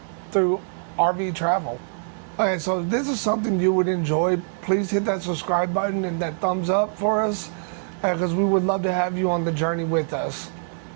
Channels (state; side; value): silent; left; digital silence